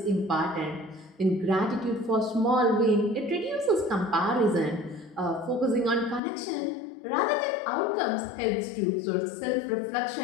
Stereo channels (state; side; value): drops out; right; at 6.2 s